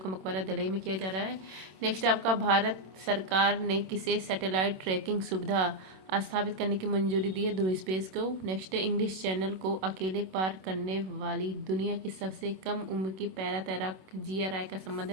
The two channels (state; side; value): late; left; 27 ms